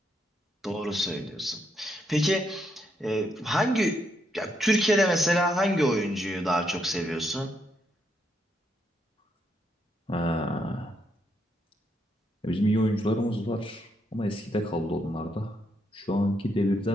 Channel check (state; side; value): normal; both; correlation 0.77